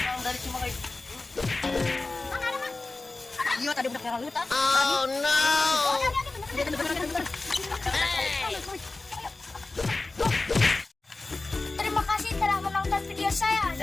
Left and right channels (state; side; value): quieter; right; 3.3 dB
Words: Dari Cimahi. Iya, tadi udah kira luta. Oh no. Terima kasih telah menonton video saya.